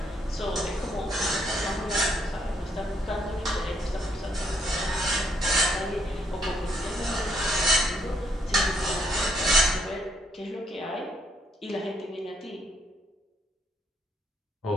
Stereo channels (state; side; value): normal; both; correlation 0.72